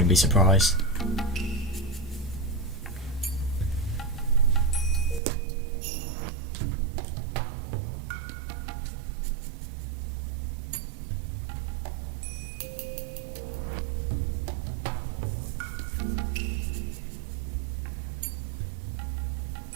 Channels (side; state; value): left; drops out; at 5.2 s